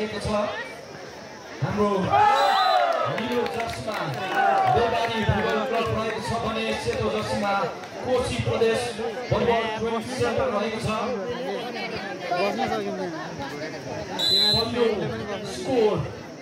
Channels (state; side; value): identical; both; correlation 1.00